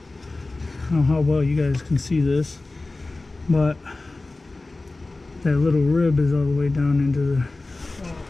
don't know how well you guys can see this, but that little rib is all the way down into the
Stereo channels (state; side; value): quieter; right; 3.2 dB